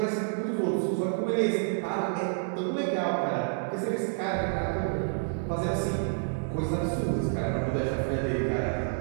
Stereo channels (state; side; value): silent; left; digital silence